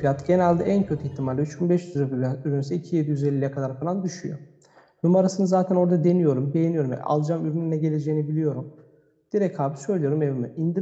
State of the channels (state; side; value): identical; both; correlation 1.00